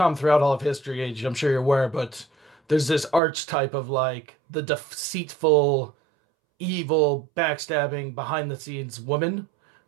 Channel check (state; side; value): drops out; left; at 3.2 s